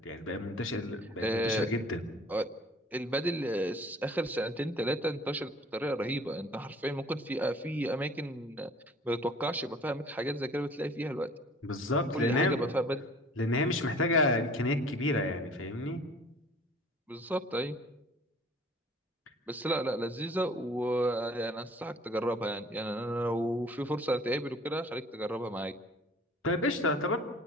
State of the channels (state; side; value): normal; both; correlation 0.50